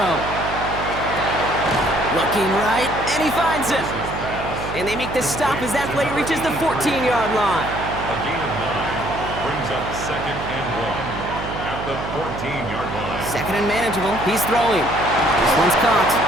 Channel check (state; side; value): noise; right; hum, 8 dB below the sound